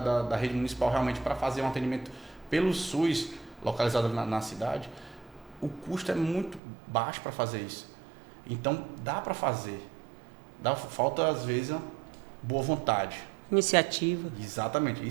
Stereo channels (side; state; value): left; drops out; at 6.6 s